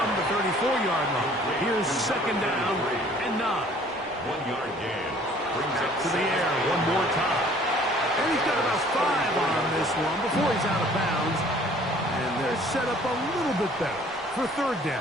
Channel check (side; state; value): both; normal; correlation 0.54